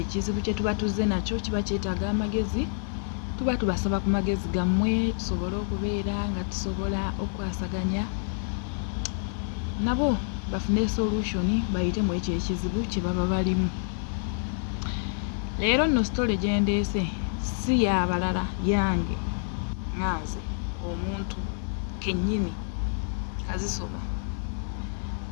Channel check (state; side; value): silent; right; digital silence